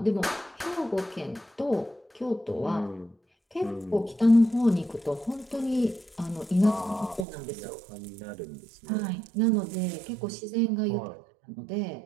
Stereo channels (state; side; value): drops out; left; at 7.2 s